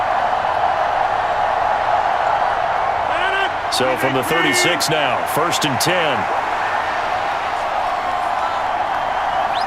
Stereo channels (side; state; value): both; identical; correlation 1.00